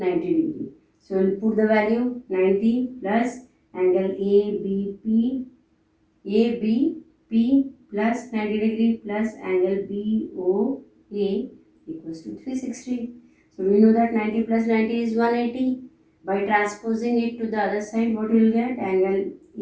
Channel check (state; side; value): identical; both; correlation 1.00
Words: degree. So we'll put the value 90 plus angle ABP plus 90 degree plus angle BOA equals to 360. So we know that 90 plus 90 is 180. By transposing it to the other side, what you will get? Angle